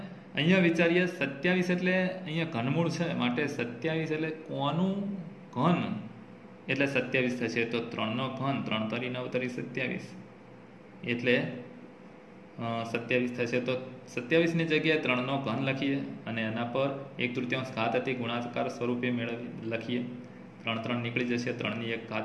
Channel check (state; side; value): identical; both; correlation 1.00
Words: અહીંયા વિચારીએ 27 એટલે અહીંયા ઘનમૂળ છે માટે 27 એટલે કોનું ઘન એટલે 27 થશે. તો 3નો ઘન 3 તરી 9 તરી 27 એટલે 27 થશે. તો 27ની જગ્યાએ 3નો ઘન લખીએ અને એના પર 1/3 ઘાત હતી ગુણાકાર સ્વરૂપે લખીએ. 3 નીકળી જશે 3/1